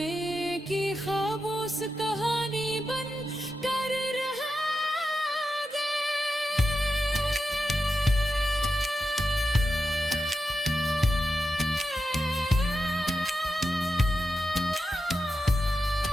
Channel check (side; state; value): both; normal; correlation 0.89